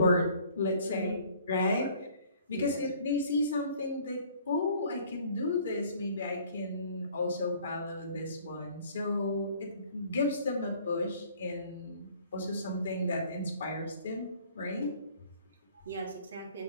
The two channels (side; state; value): both; inverted; correlation -0.55